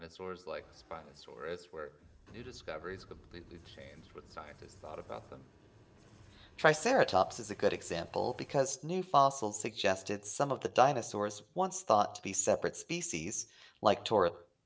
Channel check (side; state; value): both; identical; correlation 1.00